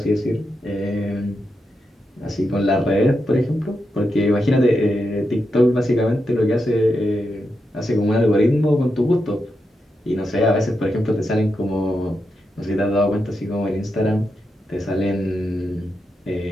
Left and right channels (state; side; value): normal; both; correlation 0.86